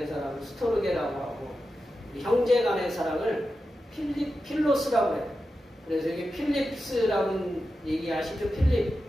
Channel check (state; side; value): normal; both; correlation 0.91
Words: 사랑을 스토르게라고 하고 형제 간의 사랑을 필로스라고 해요. 그래서 이게 필립스라는 얘기 아시죠? 필립.